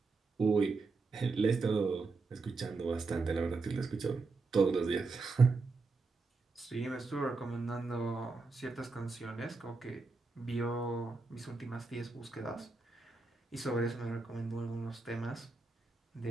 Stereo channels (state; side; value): quieter; left; 3.9 dB